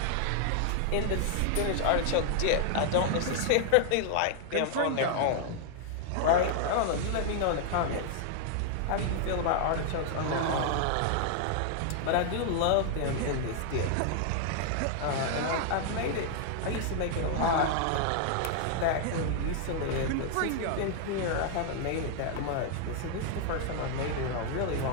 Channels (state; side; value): different; both; correlation 0.00